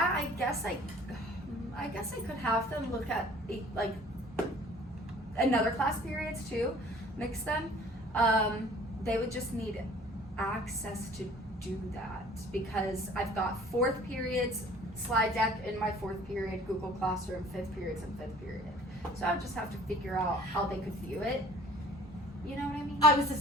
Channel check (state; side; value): normal; both; correlation 0.50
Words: I guess I could have them look at like another class periods too, mix them. They would just need access to do that because I've got 4th periods slide deck in my 4th period, Google Classroom, 5th periods and 5th period. So I would just have to figure out how they could view it. You know what I mean? I was the